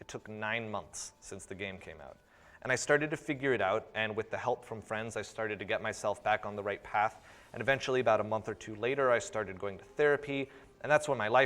took 9 months since the game came out. And I started to figure it out, and with the help from friends, I started to get myself back on the right path. And eventually, about a month or 2 later, I started going to therapy, and that's when my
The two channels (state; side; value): identical; both; correlation 1.00